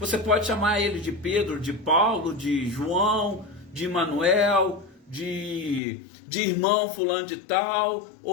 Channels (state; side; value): drops out; right; at 5.8 s